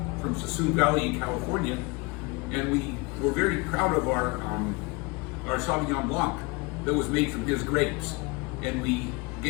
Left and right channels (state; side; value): quieter; right; 26.8 dB